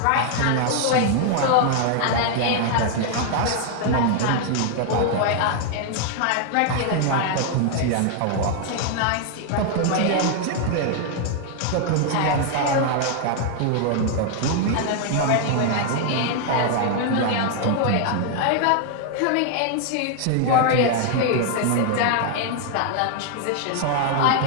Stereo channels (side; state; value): both; different; correlation 0.00